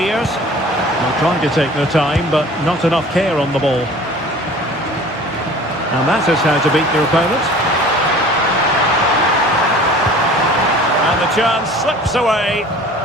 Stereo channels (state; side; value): normal; both; correlation 0.45